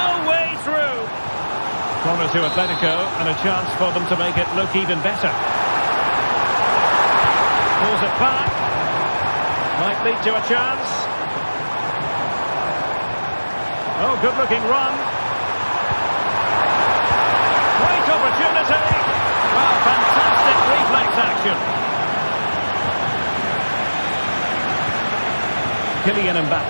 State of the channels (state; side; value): inverted; both; correlation -1.00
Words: way through. Corner to Atletico and a chance for them to make it look even better. Pulls it back. Might lead to a chance. Oh, good-looking run. Great opportunity. Well, fantastic reflex action. Kylian